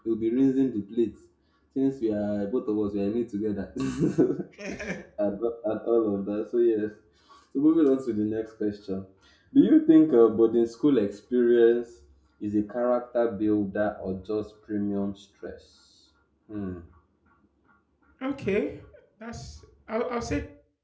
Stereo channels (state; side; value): identical; both; correlation 1.00